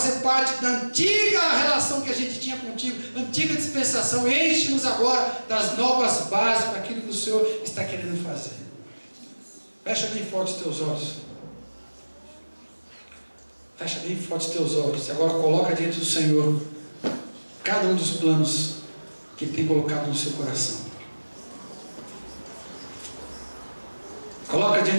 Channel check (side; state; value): both; inverted; correlation -1.00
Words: parte da antiga relação que a gente tinha contigo, antiga dispensação. Enche-nos agora das novas bases para aquilo que o Senhor está querendo fazer. Fecha bem forte os teus olhos. Fecha bem forte os teus olhos. E agora coloca diante do Senhor cada um dos planos que Ele tem colocado no seu coração. Coloca